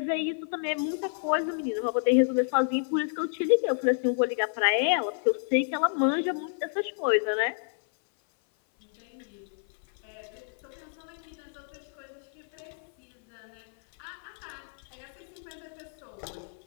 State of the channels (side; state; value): right; silent; 56 dB below the other